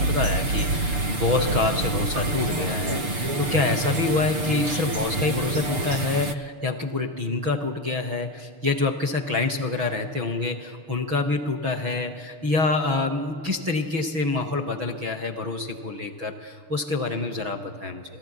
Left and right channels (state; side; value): late; left; 6.7 ms